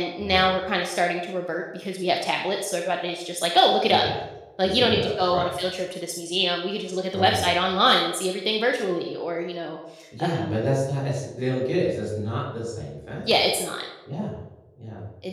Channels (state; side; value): identical; both; correlation 1.00